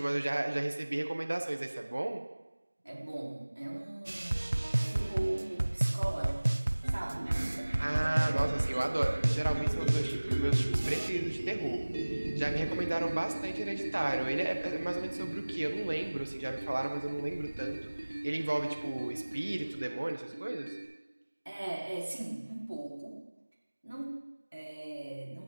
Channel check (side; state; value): both; inverted; correlation -1.00